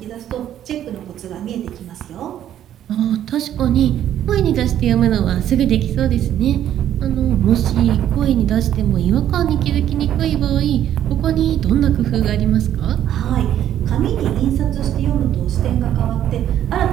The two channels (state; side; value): quieter; left; 11.0 dB